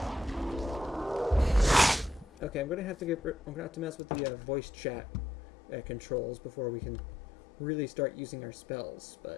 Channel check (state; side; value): drops out; right; at 4.0 s